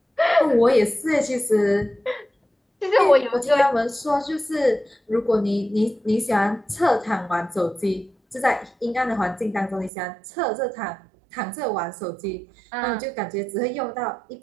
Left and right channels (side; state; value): left; drops out; at 9.9 s